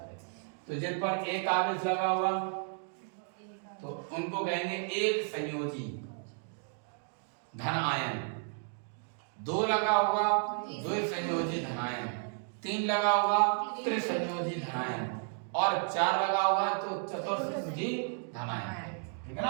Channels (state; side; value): silent; left; 55 dB below the other